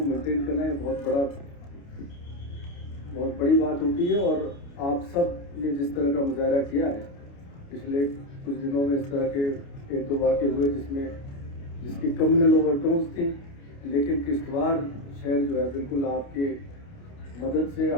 मेंटेन करना ये बहुत बड़ी बात होती है। और आप सब ने जिस तरह का मुजाहरा किया है, पिछले कुछ दिनों में इस तरह के एक दो वाक़े हुए जिसकी कम्युनल ओवरटोन्स थी, लेकिन किश्तवाड़ शहर जो है बिल्कुल आपके मदद से,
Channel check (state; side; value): late; right; 29 ms